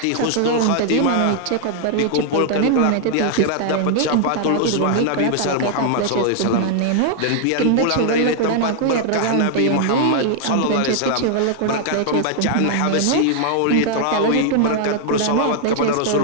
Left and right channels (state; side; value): different; both; correlation 0.00